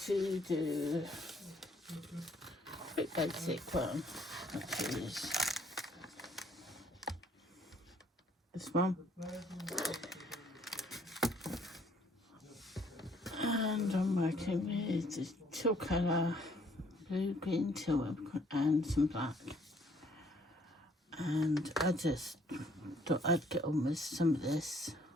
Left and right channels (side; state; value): both; normal; correlation 0.64